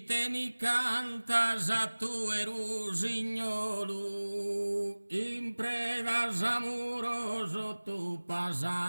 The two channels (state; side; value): inverted; both; correlation -1.00